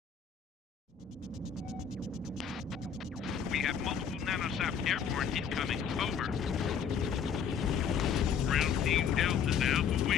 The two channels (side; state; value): right; quieter; 7.2 dB